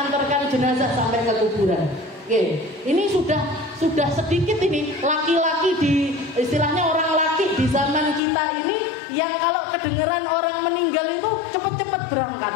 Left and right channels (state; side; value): drops out; right; at 8.2 s